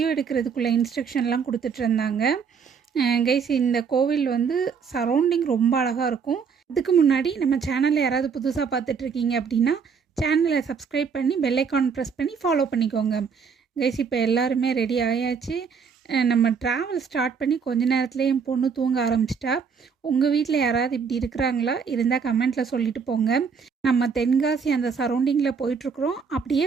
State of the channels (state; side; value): quieter; left; 6.1 dB